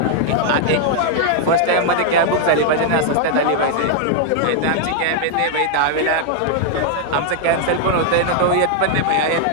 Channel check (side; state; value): both; different; correlation 0.00